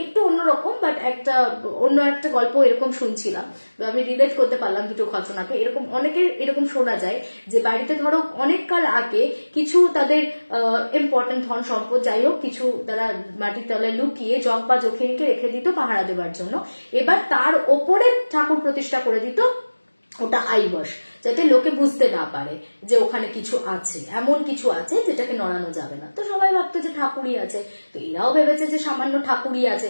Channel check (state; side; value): inverted; both; correlation -1.00